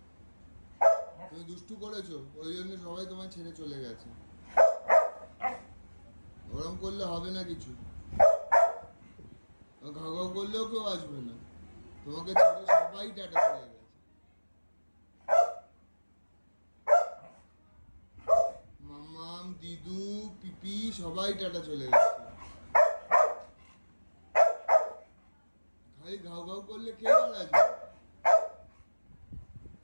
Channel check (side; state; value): both; inverted; correlation -1.00